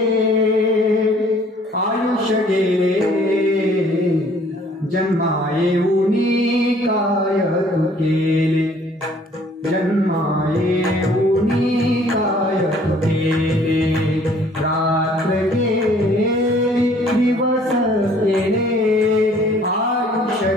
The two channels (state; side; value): normal; both; correlation 0.57